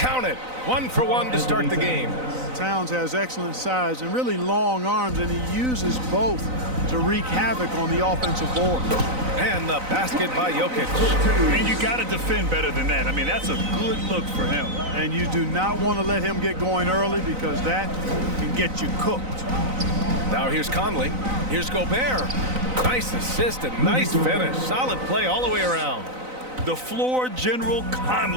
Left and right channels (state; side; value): late; left; 3.9 ms